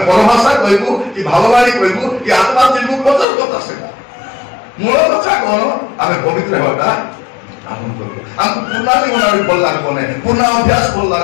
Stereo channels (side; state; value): right; drops out; at 3.2 s